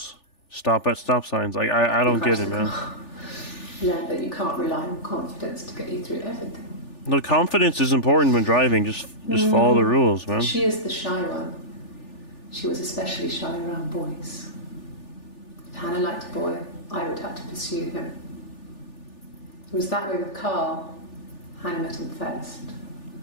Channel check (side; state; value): right; late; 3.4 ms